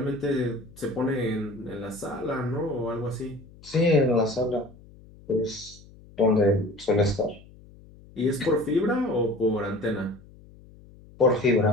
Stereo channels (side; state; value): left; noise; hum, 23 dB below the sound